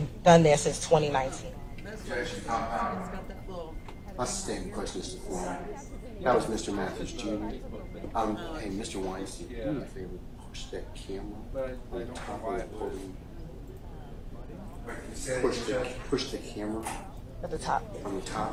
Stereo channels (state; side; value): identical; both; correlation 1.00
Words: done that since 2019? That's the same question as the form. That was Mr. Matthews Jr. Hey, Mr. Weinstein, do me a favor, push that camera on the top of the podium. Push the camera At the top. on the